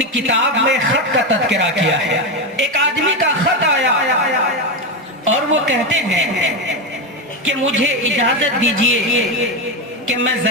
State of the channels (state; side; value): normal; both; correlation 0.12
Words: کتاب میں خط کا تذکرہ کیا ہے۔ ایک آدمی کا خط آیا اور وہ کہتے ہیں کہ مجھے اجازت دیجئے کہ میں